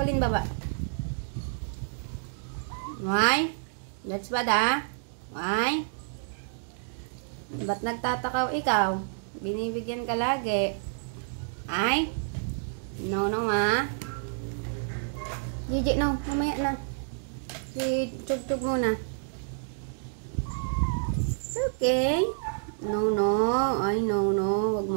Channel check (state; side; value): silent; left; digital silence